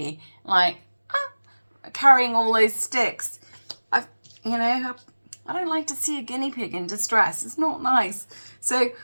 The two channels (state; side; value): inverted; both; correlation -1.00